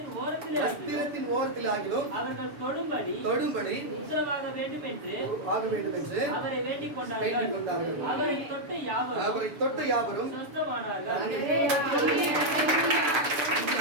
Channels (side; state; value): left; late; 7.0 ms